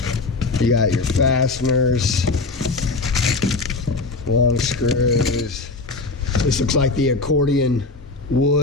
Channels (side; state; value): right; quieter; 3.6 dB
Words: you got your fasteners, long screws. This looks like the accordion